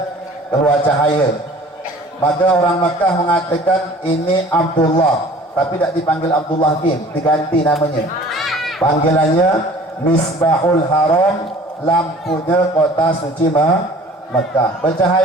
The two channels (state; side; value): normal; both; correlation 0.48